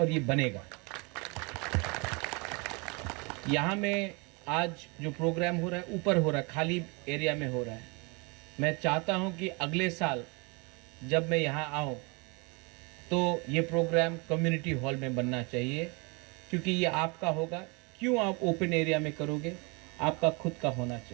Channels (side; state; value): left; quieter; 30.0 dB